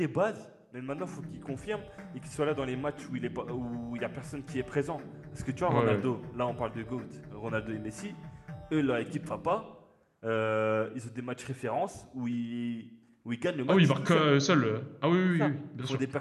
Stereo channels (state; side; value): identical; both; correlation 1.00